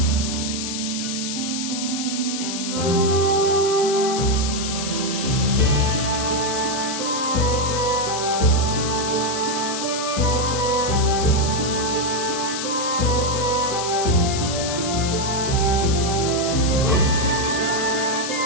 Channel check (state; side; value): noise; left; hiss, 5 dB below the sound